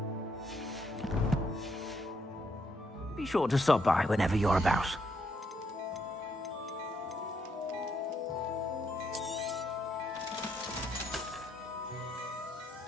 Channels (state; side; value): normal; both; correlation 0.75